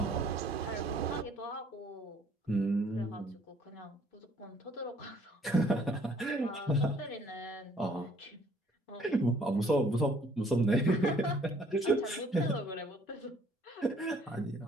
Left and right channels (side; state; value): both; normal; correlation 0.60